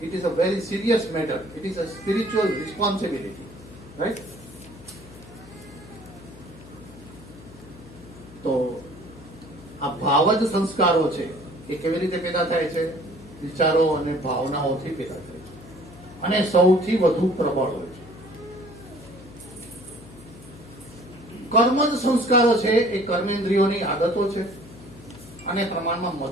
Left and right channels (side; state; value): left; noise; hum, 19 dB below the sound